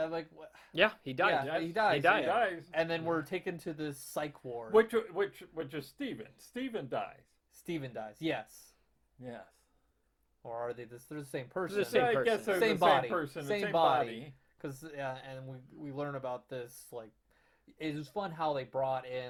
like what? Yeah, he died. Yeah, he dies. He died. He dies. And then we're taken to the psych ward. Which is Steven. Steven dies. Steven dies. Yes. Yes. Or are they? They're the same person. The same I person. guess they're Same the body. same person, Same the same body. body. Because and we learn about this, like, it was fun how they brought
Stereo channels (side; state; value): both; identical; correlation 1.00